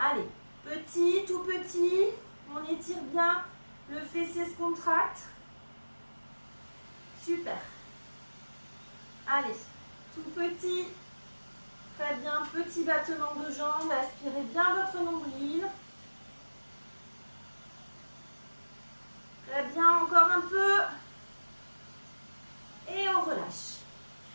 petit, tout petit, on étire bien, le fessier se contracte. Super. Allez, tout petit, très bien, petit battement de jambes, aspirez bien votre nombril. Très bien, encore un peu. Et on relâche.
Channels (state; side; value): inverted; both; correlation -1.00